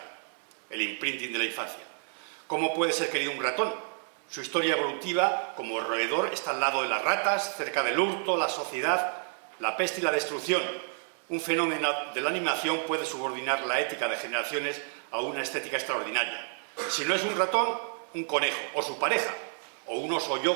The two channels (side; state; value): left; silent; 58 dB below the other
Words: el imprinting de la infancia. ¿Cómo puede ser querido un ratón? Su historia evolutiva como roedor está al lado de las ratas, cerca del hurto, la sociedad, la peste y la destrucción. Un fenómeno de la animación puede subordinar la ética de generaciones a una estética extraordinaria. Si no es un ratón, un conejo, o su pareja, o un oso